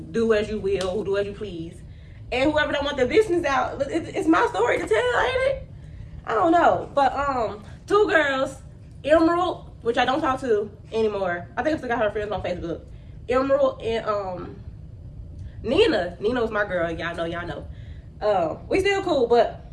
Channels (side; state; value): both; identical; correlation 1.00